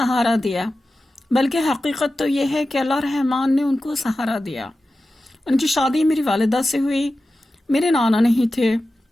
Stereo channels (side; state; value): both; normal; correlation 0.93